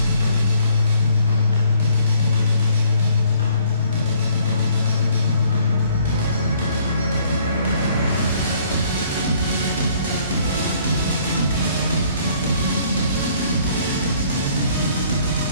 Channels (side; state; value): both; inverted; correlation -0.61